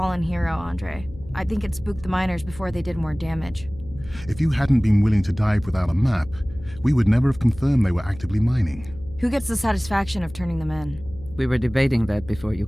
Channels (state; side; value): noise; left; hum, 17 dB below the sound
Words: hero, Andre. I think it spooked the miners before they did more damage. If you hadn't been willing to dive without a map, we would never have confirmed they were actively mining. Who gets the satisfaction of turning them in? We were debating that before you